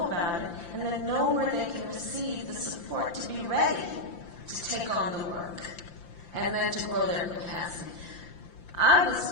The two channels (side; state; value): right; late; 5.8 ms